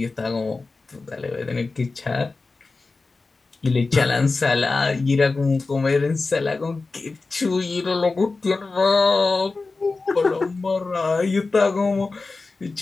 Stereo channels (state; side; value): quieter; right; 3.8 dB